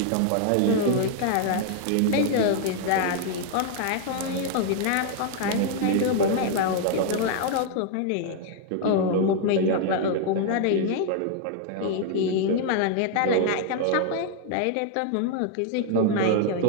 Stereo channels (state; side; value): different; both; correlation 0.00